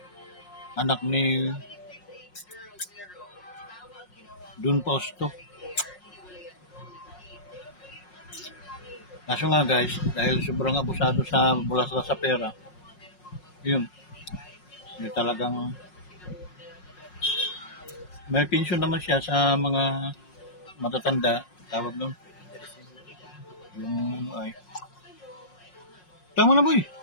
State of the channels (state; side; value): late; right; 5.5 ms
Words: anak ni Dun Posto. Kaso nga guys, dahil sobrang abusado sa bulasla sa pera, yun talagang may pension naman siya sa mga matatanda, tawag nun. Yung, ay, tama na boy.